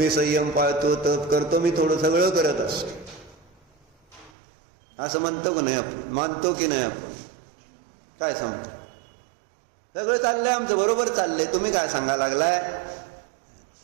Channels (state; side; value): drops out; left; at 4.3 s